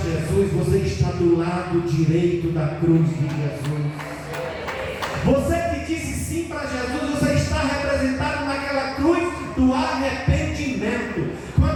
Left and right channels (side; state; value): both; identical; correlation 1.00